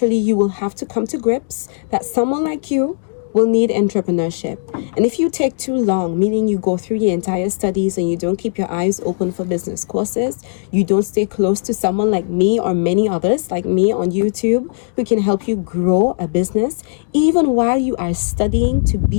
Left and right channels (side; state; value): right; silent; digital silence